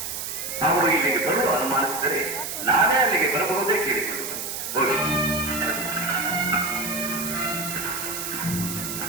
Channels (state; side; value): noise; right; hiss, 5 dB below the sound